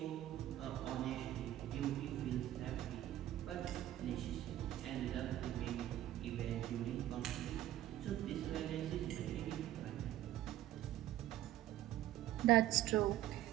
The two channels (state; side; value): quieter; left; 13.5 dB